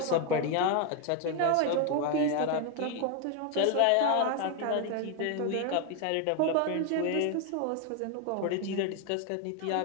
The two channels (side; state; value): both; different; correlation 0.01